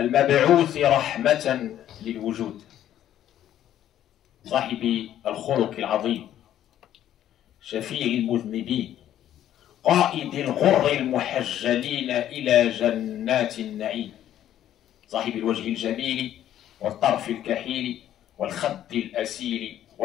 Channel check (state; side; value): quieter; right; 11.6 dB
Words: رحمة للوجود، صاحب الخلق العظيم، شفيع المذنبين، قائد الغر المحجلين إلى جنات النعيم، صاحب الوجه الجميل والطرف الكحيل والخد الأسيل